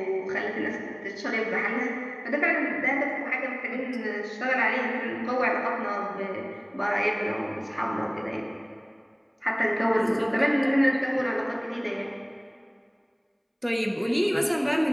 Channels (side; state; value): both; identical; correlation 1.00